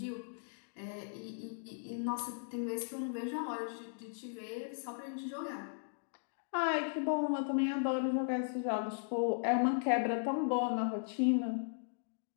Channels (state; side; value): silent; right; digital silence